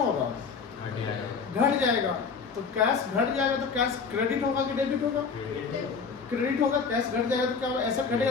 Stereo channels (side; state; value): right; quieter; 5.4 dB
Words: होगा? घट जाएगा। तो कैश घट जाएगा तो कैश क्रेडिट होगा कि डेबिट होगा? क्रेडिट होगा। कैश घट जाएगा तो क्या होगा? एसेट घटेगा